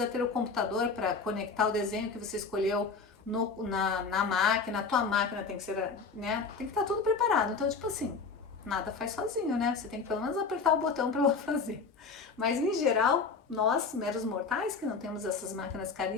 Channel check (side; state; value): right; quieter; 4.8 dB